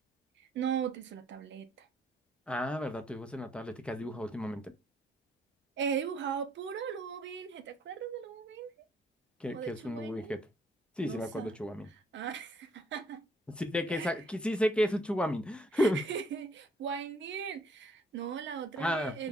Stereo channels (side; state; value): both; normal; correlation 0.64